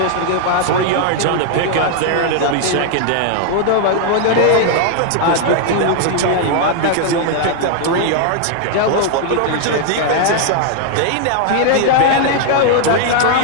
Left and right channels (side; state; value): both; different; correlation 0.00